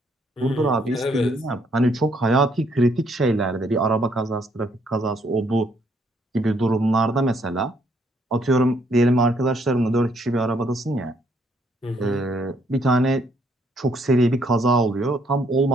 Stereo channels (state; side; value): normal; both; correlation 0.69